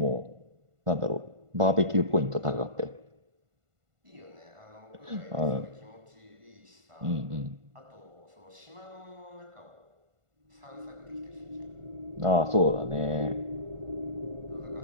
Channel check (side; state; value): left; late; 1.5 ms